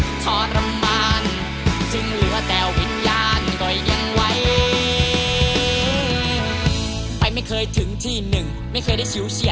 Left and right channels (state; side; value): identical; both; correlation 1.00